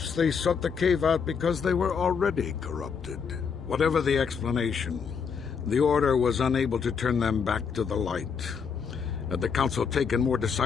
they sought the cave out because they were already corrupted. Whatever the explanation, the Order was unable to turn them back to the light. Had the Council taken more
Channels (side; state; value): right; quieter; 6.2 dB